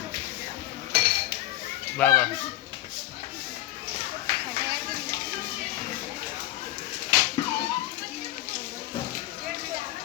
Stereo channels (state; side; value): quieter; right; 15.7 dB